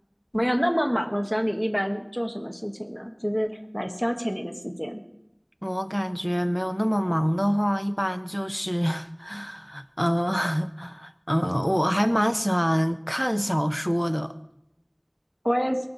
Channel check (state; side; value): identical; both; correlation 1.00